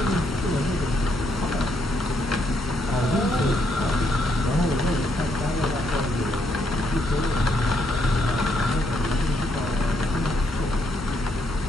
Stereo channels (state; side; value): normal; both; correlation 0.74